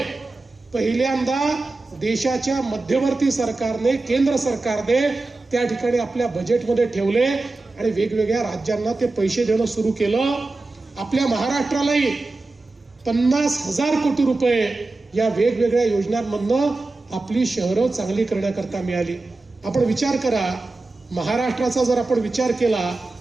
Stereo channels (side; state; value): left; quieter; 3.3 dB